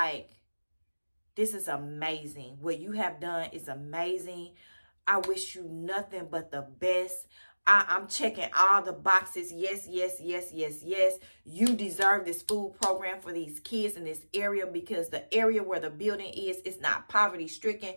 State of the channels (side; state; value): both; inverted; correlation -1.00